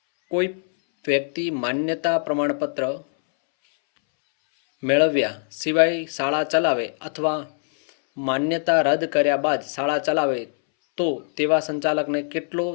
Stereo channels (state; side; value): silent; right; 64 dB below the other